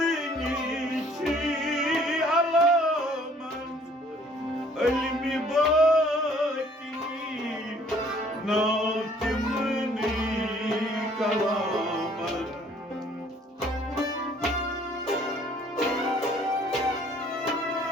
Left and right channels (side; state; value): both; normal; correlation 0.58